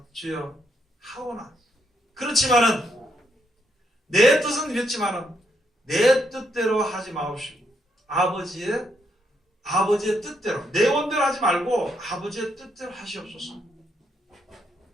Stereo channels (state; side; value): normal; both; correlation 0.77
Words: 주여 하오나 그렇지만은 내 뜻은 이랬지만은 내 뜻대로 하지 마옵시고 아버지의 뜻대로 내 원대로 하지 말고 아버지의 뜻대로 하시옵소서.